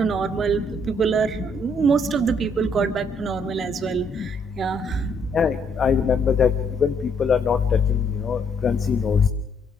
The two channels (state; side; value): normal; both; correlation 0.70